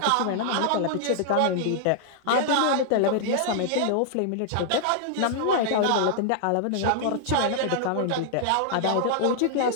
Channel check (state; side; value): different; both; correlation -0.01